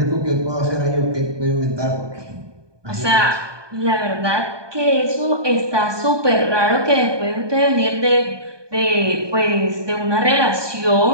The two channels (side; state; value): left; late; 1.2 ms